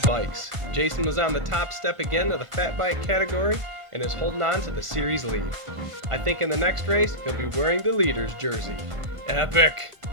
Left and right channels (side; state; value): left; late; 1.5 ms